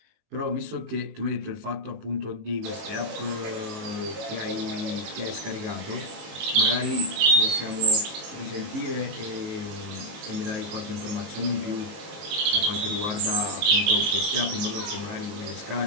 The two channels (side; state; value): left; late; 19 ms